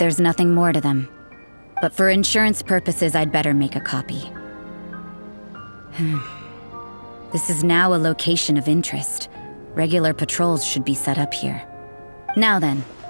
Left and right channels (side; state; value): both; inverted; correlation -1.00